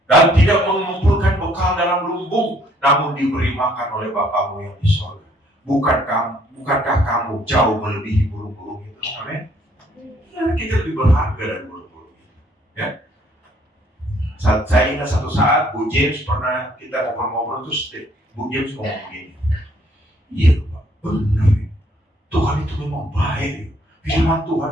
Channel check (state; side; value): normal; both; correlation 0.64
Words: dan tidak mengumpulkan bekal dalam lumbung, namun diberi makan oleh Bapamu yang di sorga. Bukankah kamu jauh melebihi burung-burung itu? Amin. Ya, kita lebih berharga dari burung-burung itu. Ya. Saya ingat satu saat Bu James pernah kita ngobrol-ngobrol terus Bu James ngomong begini. Iya Pak, benar ya. Tuhan itu memang baik. Firman